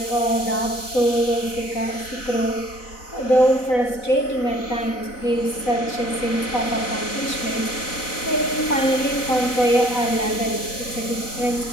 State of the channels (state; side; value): late; right; 4.0 ms